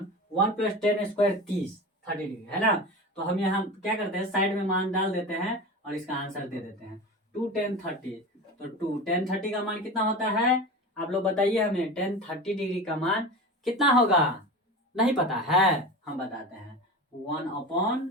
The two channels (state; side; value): normal; both; correlation 0.29